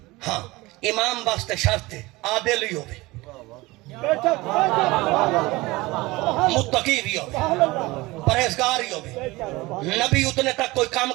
ہاں امام واسطے شرط ہے عادل ہی ہوئے متقی بھی ہوئے پرہیزگار ہی ہوئے نبی اتنے تک کوئی کام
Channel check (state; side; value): quieter; left; 21.1 dB